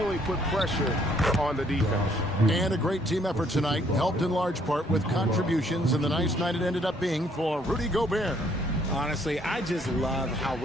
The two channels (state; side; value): normal; both; correlation 0.66